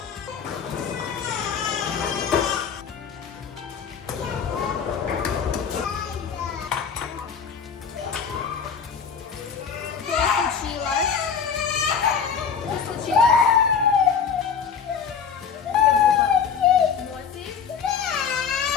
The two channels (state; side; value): quieter; right; 6.8 dB